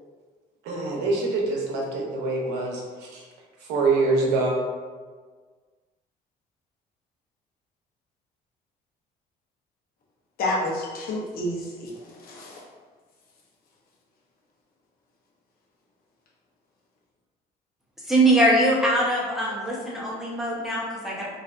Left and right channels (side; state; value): both; normal; correlation 0.41